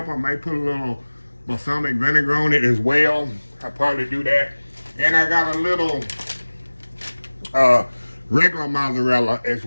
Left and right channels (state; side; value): inverted; both; correlation -1.00